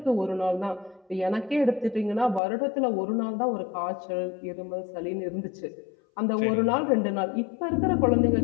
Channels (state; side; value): drops out; right; at 2.4 s